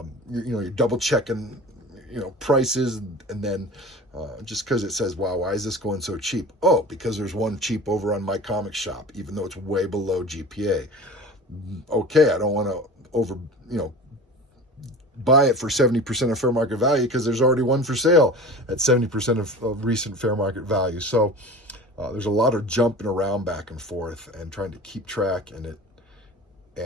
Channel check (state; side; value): normal; both; correlation 0.36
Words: you're double checking prices, and then just because it says, wow, why is this going so cheap? Oh, because there's one cheap over on my comic shop, even though it's way below GPA. Okay, I don't want to buy it for 70% of fair market value because there's already one for sale at 70% of recent fair market value. So there's a lot of jumping around back and forth and trying to keep track